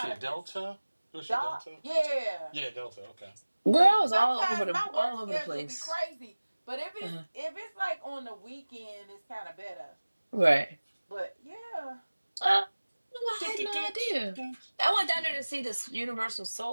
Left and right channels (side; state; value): both; inverted; correlation -1.00